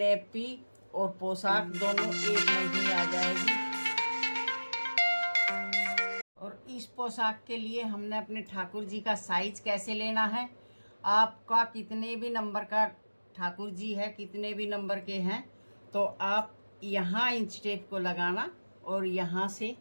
और पोशाक दोनों एक में ही आ जाएगी। और इस पोशाक के लिए हमने अपने ठाकुर जी का साइज कैसे लेना है, आपका कितने भी नंबर का ठाकुर जी है, कितने भी नंबर के हैं, तो आप यहाँ इंच टेप को लगाना और यहाँ से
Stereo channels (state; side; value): inverted; both; correlation -1.00